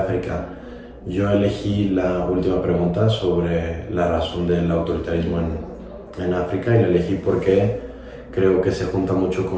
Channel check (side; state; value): both; identical; correlation 1.00